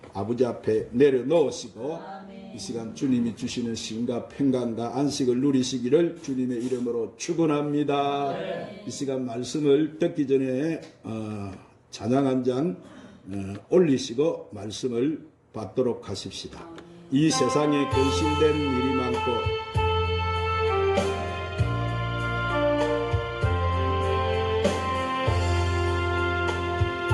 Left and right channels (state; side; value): identical; both; correlation 1.00